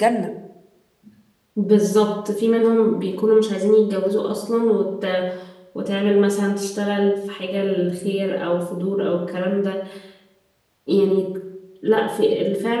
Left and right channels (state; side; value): identical; both; correlation 1.00